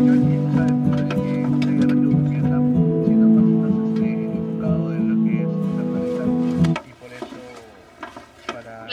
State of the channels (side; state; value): both; identical; correlation 1.00